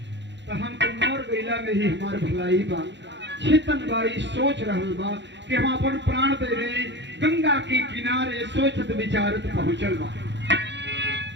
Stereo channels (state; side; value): late; left; 0.52 ms